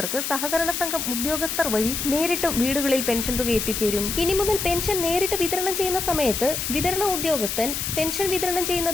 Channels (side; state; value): left; noise; hiss, 3 dB below the sound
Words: സഹകരണ സംഘം ഉദ്യോഗസ്ഥർ വഴി നേരിട്ടും വീടുകളിൽ പെൻഷൻ തുക എത്തിച്ചേരും. ഇനി മുതൽ പെൻഷൻ നേരിട്ട് വിതരണം ചെയ്യുന്ന സമയത്ത് വിതരണ ഉദ്യോഗസ്ഥൻ പെൻഷൻ വിതരണം